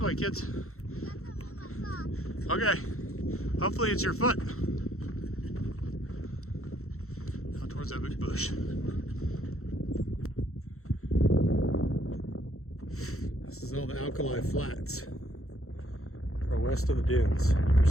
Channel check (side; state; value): right; late; 0.63 ms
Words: kids. Okay. Hopefully it's your foot. Out towards that big bush. This is all the Alkali Flats, or west of the dunes. For